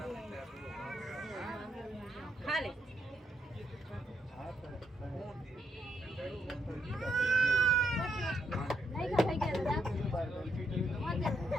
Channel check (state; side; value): normal; both; correlation 0.77